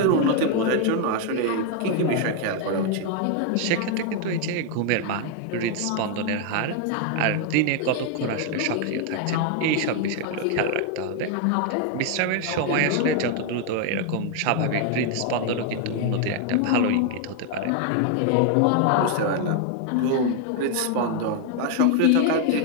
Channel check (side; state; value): both; different; correlation 0.00